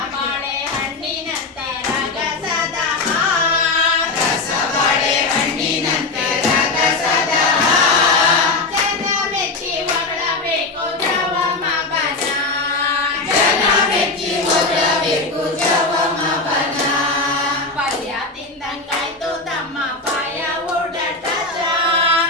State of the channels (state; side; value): quieter; right; 3.5 dB